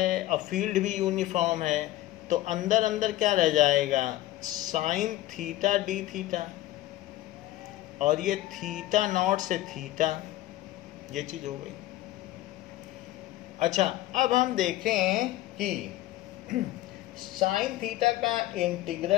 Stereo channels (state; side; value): quieter; right; 15.8 dB